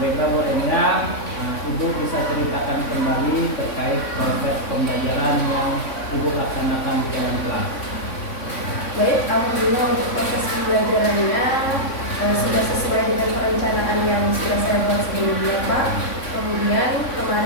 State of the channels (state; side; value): late; right; 3.6 ms